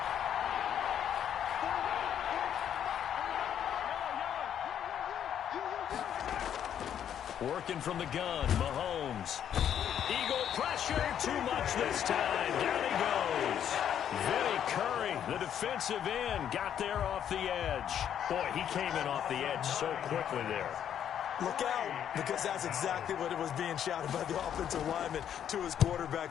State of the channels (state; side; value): quieter; right; 9.5 dB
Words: Working from the gun, Mahomes. Eagle pressure, too much this time. Down he goes. Vinny Curry, the defensive end, got there off the edge. Boy, he came in off the edge so quickly there. Look out, because that's exactly what it was being shouted by the offensive lineman to his